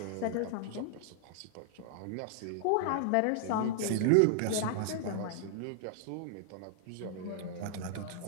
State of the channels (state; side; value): different; both; correlation 0.00